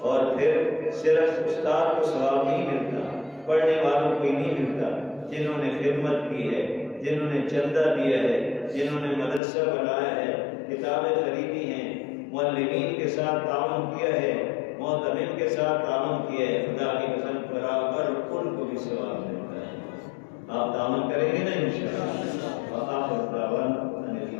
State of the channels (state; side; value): drops out; right; at 9.4 s